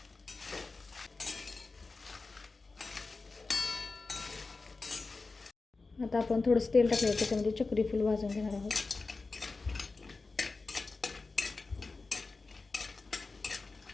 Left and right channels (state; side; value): quieter; right; 3.8 dB